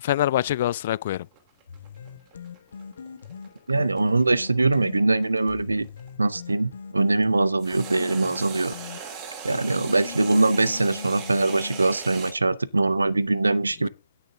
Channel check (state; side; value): inverted; both; correlation -0.90